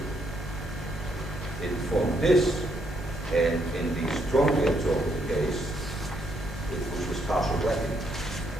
it formed this, and in the strongly absorbed case, it was partial wetting.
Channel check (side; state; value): both; normal; correlation 0.74